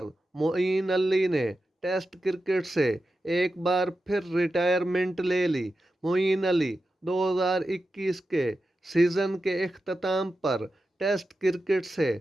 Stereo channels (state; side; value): normal; both; correlation 0.91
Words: मोईन अली ने टेस्ट क्रिकेट से एक बार फिर रिटायरमेंट ले ली। मोईन अली 2021 के सीज़न के इख्तिताम पर टेस्ट क्रिकेट से